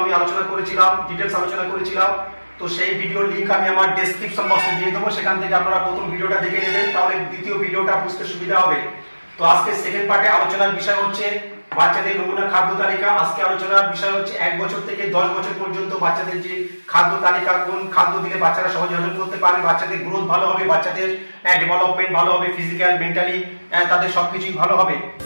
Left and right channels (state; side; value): inverted; both; correlation -1.00